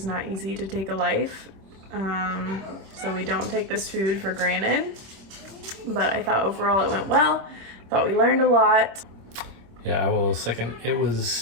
not easy to take a life. So we don't take this food for granted, but I thought overall it went well. Thought we learned a lot. Yeah, I will second. It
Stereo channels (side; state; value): left; late; 26 ms